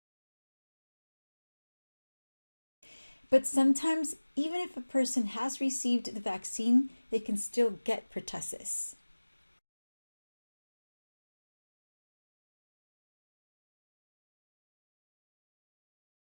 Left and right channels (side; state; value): both; inverted; correlation -1.00